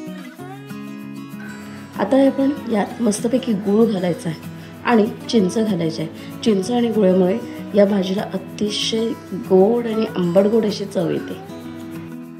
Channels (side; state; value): both; identical; correlation 1.00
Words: आता आपण यात मस्तपैकी गूळ घालायचा आहे आणि चिंच घालायची आहे. चिंच आणि गुळामुळे या भाजीला अतिशय गोड आणि आंबट गोड अशी चव येते.